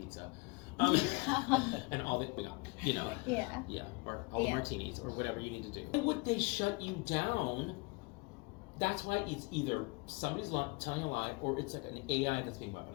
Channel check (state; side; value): quieter; right; 27.5 dB